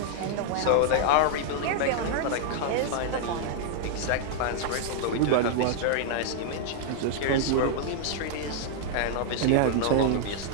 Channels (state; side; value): different; both; correlation -0.01